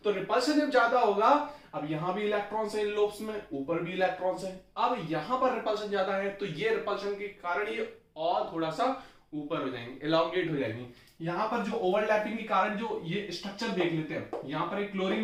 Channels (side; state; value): both; identical; correlation 1.00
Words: तो रिपल्शन जब ज्यादा होगा, अब यहां भी इलेक्ट्रॉन्स है लोब्स में, ऊपर भी इलेक्ट्रॉन्स है, अब यहां पर रिपल्शन ज्यादा है, तो ये रिपल्शन के कारण ये और थोड़ा सा ऊपर हो जाएंगे, एलोंगेट हो जाएंगे। यहां पर जो ओवरलैपिंग के कारण जो ये स्ट्रक्चर देख लेते हैं, यहां पर एक